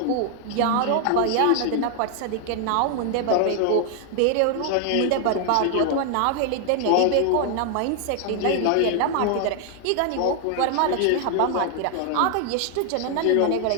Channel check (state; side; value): different; both; correlation 0.00